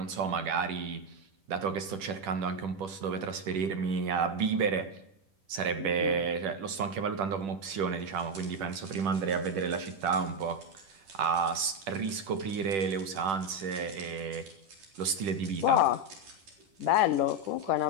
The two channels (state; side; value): late; left; 10 ms